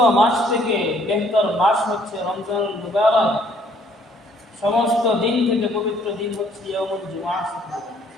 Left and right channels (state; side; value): normal; both; correlation 0.63